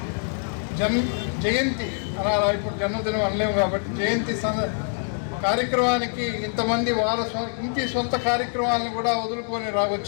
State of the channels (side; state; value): right; silent; 62 dB below the other